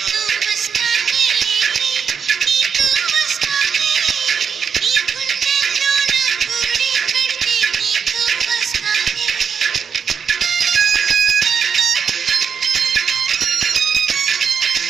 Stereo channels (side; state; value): left; quieter; 6.7 dB